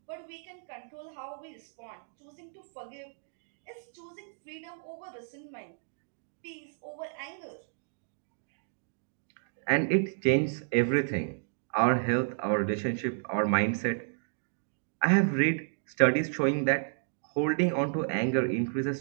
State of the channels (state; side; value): silent; left; digital silence